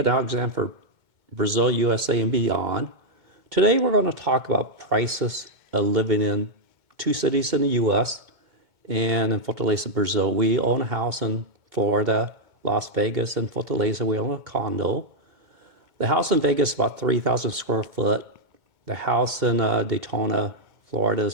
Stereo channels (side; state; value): left; late; 2.2 ms